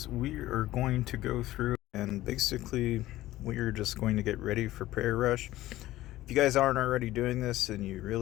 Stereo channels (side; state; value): right; quieter; 15.9 dB